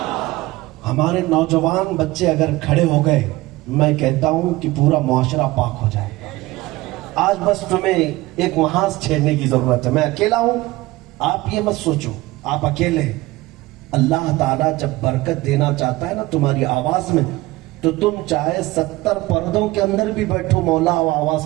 हमारे नौजवान बच्चे अगर खड़े हो गए, मैं कहता हूं कि पूरा मुआशरा पाक हो जाएगा। आज बस तुम्हें एक महाज छेड़ने की जरूरत है। मैं अकेला हूं, आप ये मत सोचो आप अकेले। अल्लाह ताला जब बरकत देना चाहता है ना तुम्हारी आवाज में, तो तुम चाहे 70 पर्दों के अंदर भी बैठो, मौला वो आवाज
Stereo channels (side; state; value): left; quieter; 19.4 dB